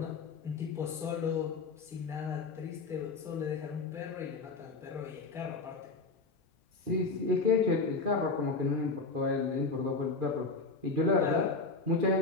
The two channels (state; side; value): quieter; right; 3.9 dB